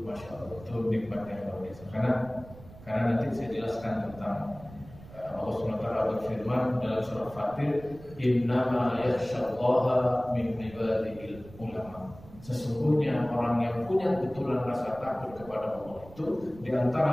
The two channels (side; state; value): right; noise; rumble, 19 dB below the sound